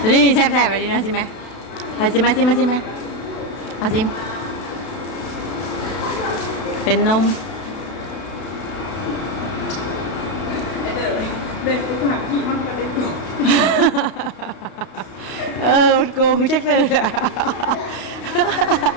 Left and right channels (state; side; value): late; right; 32 ms